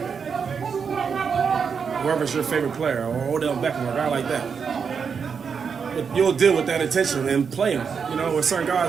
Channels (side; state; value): left; quieter; 6.2 dB